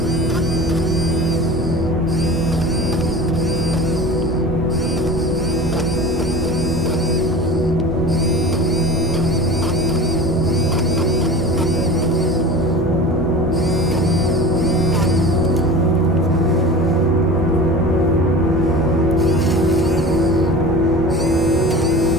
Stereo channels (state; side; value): normal; both; correlation 0.35